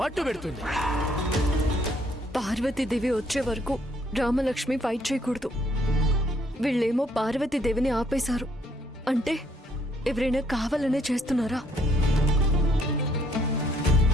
పెడుతుంది. పార్వతీదేవి వచ్చే వరకు రామలక్ష్మి ఫైట్ చేయకూడదు. వీళ్ళేమో పార్వతీదేవిని ఆపేశారు అంటే ఎవరైనా కావాలనే చేస్తున్నారా?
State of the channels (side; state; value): both; normal; correlation 0.67